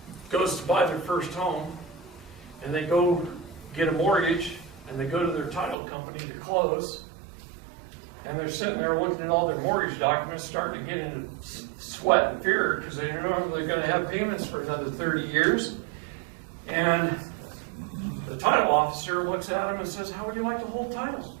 goes to buy their first home, and they go get a mortgage, and they go to their title company to close, and they're sitting there looking at all their mortgage documents, starting to get into sweat and fear because they don't know if they're going to have payments for another 30 years. And the title officer looks at them and says, "How would you like to hold titles?"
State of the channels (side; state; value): left; drops out; at 5.8 s